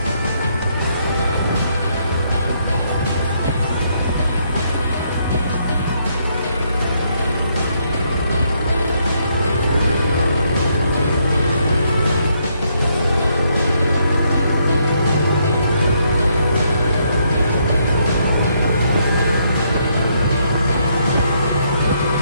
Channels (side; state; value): both; inverted; correlation -0.73